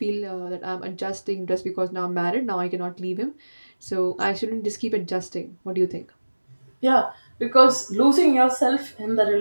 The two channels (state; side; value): inverted; both; correlation -1.00